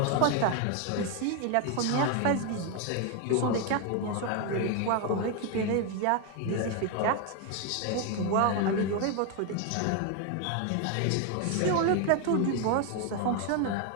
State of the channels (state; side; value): different; both; correlation 0.01